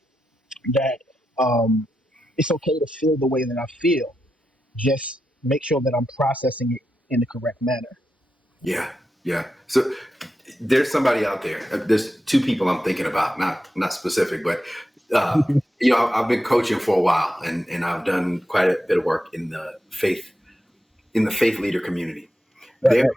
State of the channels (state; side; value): normal; both; correlation 0.88